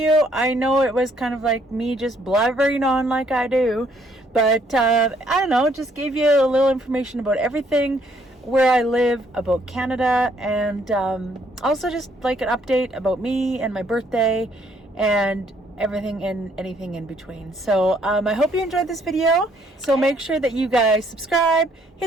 I know it was kind of like me just blabbering on like I do, but I don't know, just gave you a little information about everything, where I live, about Canada, and also just like an update about me and my birthday and everything and anything in between. So I hope you enjoyed this video. So make sure that you guys subscribe,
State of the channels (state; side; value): normal; both; correlation 0.67